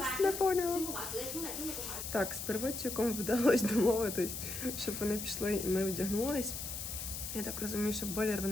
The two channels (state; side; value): noise; left; hiss, 6 dB below the sound